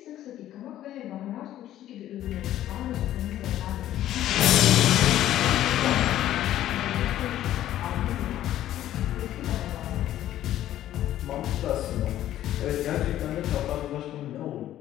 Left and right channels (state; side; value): quieter; right; 12.8 dB